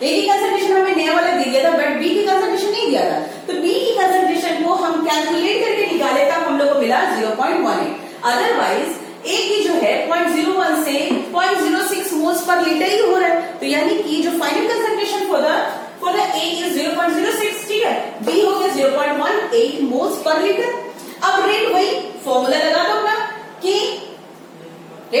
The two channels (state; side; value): identical; both; correlation 1.00